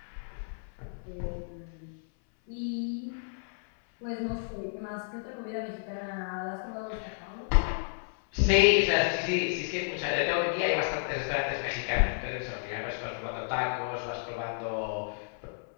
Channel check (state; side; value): silent; right; 56 dB below the other